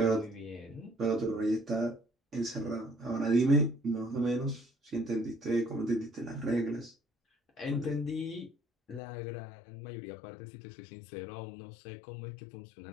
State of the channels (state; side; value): drops out; right; at 9.0 s